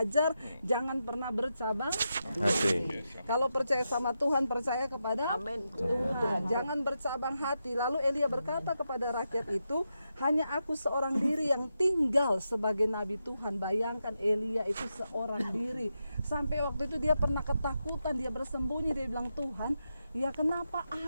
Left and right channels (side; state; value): both; inverted; correlation -0.86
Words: jangan pernah bercabang hati. Kalau percaya sama Tuhan, percaya kepada Tuhan. Jangan bercabang hati. Lalu Elia berkata kepada rakyat itu, hanya aku seorang diri yang tinggal sebagai nabi Tuhan. Bayangkan Elia itu seorang diri. Sampai waktu itu dia pernah ketakutan, dia bersembunyi, dia bilang, Tuhan, ya kenapa